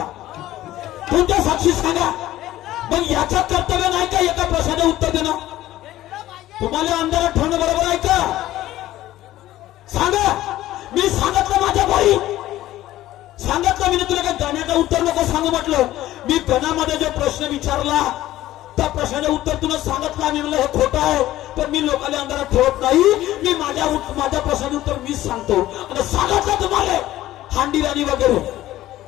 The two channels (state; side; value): quieter; right; 14.9 dB